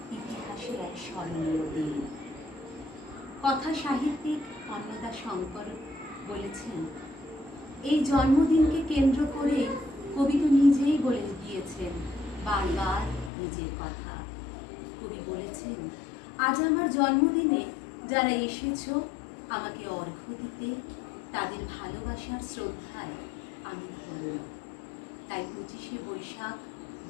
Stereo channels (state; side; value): drops out; right; at 13.3 s